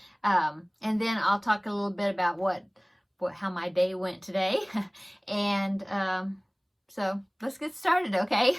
And then I'll talk a little bit about how my day went today, and so let's get started, okay?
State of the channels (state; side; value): identical; both; correlation 1.00